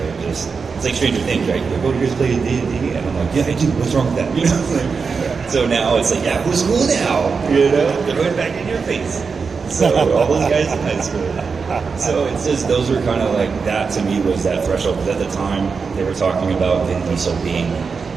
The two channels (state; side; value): quieter; left; 5.2 dB